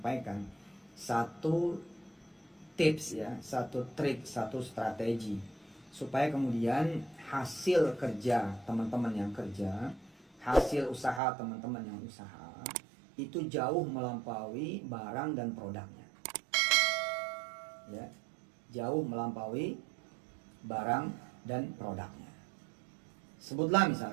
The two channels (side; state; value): left; drops out; at 11.2 s